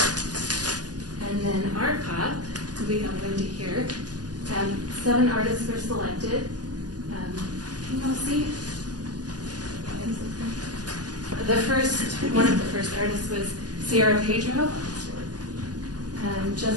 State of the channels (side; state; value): left; late; 0.69 ms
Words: And then Art Pop, we have Wendy here. 7 artists were selected. Can you all see? One of the first artists was Sierra Pedro,